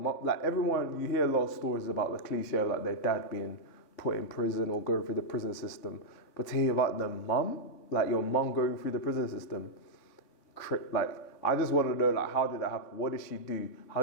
like everyone, you hear a lot of stories about the cliche of like their dad being put in prison or going through the prison system. But to hear about the mum, like your mum going through the prison system, like, I just want to know, like, how did that happen? What did she do? How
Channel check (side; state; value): right; late; 3.6 ms